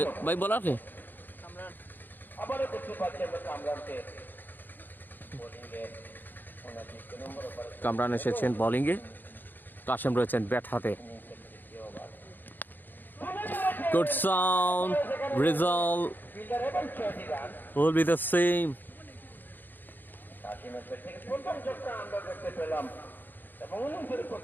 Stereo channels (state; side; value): late; right; 0.090 ms